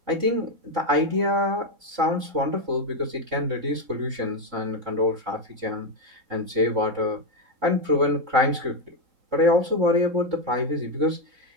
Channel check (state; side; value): late; left; 3.6 ms